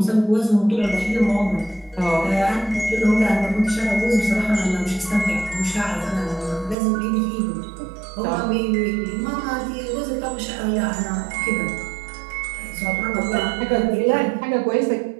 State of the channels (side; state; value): left; drops out; at 6.8 s